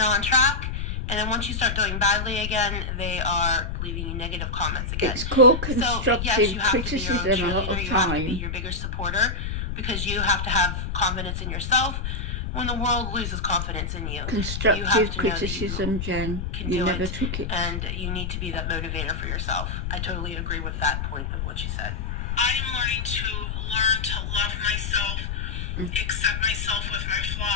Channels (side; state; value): left; noise; rumble, 3 dB below the sound